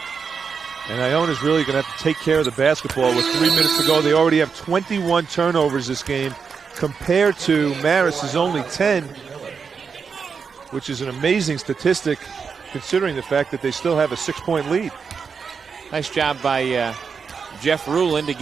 And Iona's really going to have to take care of the basketball with 3 minutes to go. They already have 21 turnovers this game compared to Marist's only 10, which is an amazing statistic considering the fact that they still have a 6-point lead. Nice job by Jeff Rulin to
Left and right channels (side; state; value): left; quieter; 5.8 dB